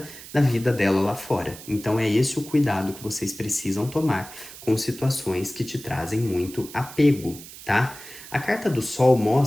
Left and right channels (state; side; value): noise; right; hiss, 16 dB below the sound